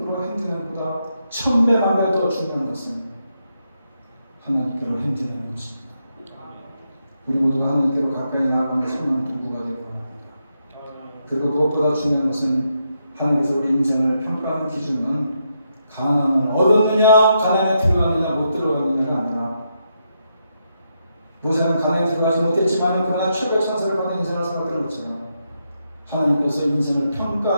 행진하는 것보다 1000배만 더 중요한 것은 하나님께로 행진하는 것입니다. 우리 모두가 하나님께로 가까이 나아가는 선한 도구가 되기 원합니다. 그리고 무엇보다 중요한 것은 하나님께서 우리 인생을 평가하는 기준은 가난을 얻었느냐, 가난에 들어갔느냐, 못 들어갔느냐가 아니라 모세는 가난에 들어가지 못했지만 그러나 최고의 찬사를 받은 인생을 살았던 것처럼 하나님께서 인생을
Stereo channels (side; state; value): both; inverted; correlation -0.81